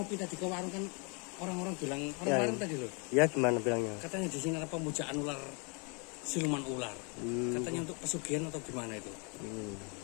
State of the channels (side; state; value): right; quieter; 34.5 dB